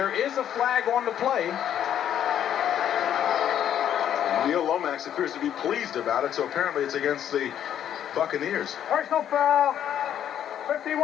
is a flag on the play. Neil Lomax appears to be pleased about it, so apparently it's against the Buccaneers. Personal foul.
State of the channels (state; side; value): quieter; right; 10.1 dB